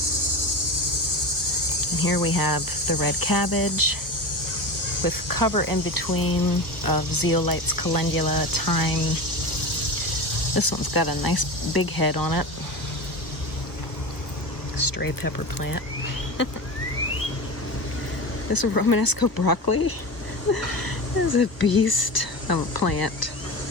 And here we have the red cabbage with cover in between of zeolites, calendula, thyme. This one's got a nice big head on it. Stray pepper plant. This Romanesco broccoli is a beast of a plant.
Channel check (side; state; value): right; late; 1.3 ms